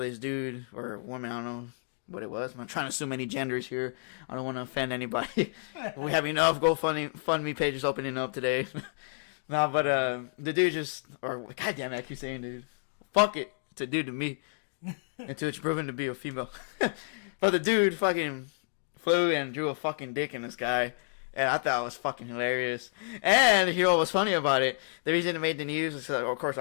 this dude, or woman, I don't know what it was. I'm trying to assume any genders here. I don't want to offend anybody. We have enough GoFundMe pages opening up today. No, but the dude goddamn it, I keep saying dude. Fuck it. It's a dude to me. Until it's proven to be a female. But the dude fucking flew and drew a fucking dick in the sky. And I thought it was fucking hilarious. And you know what was funny about it? The reason it made the news is, of course, a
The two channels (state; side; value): silent; right; digital silence